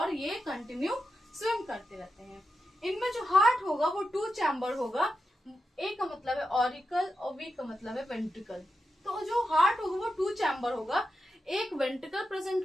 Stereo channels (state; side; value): normal; both; correlation 0.89